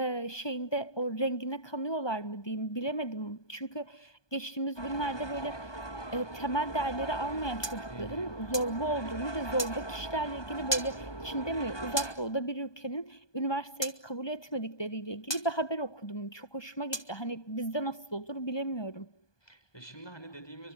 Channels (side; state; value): right; late; 1.2 ms